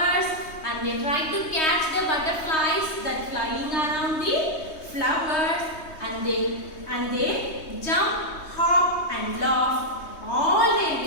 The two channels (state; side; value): late; right; 3.2 ms